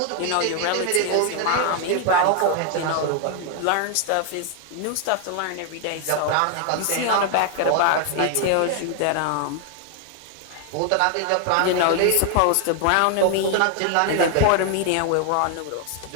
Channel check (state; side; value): different; both; correlation 0.00